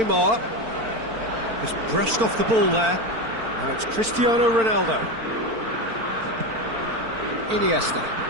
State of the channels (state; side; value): late; left; 4.5 ms